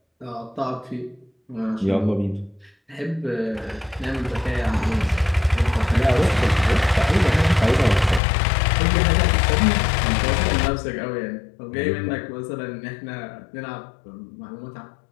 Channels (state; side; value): drops out; right; at 8.2 s